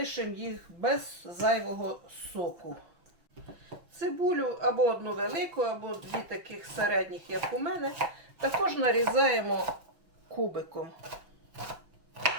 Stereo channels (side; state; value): left; late; 6.0 ms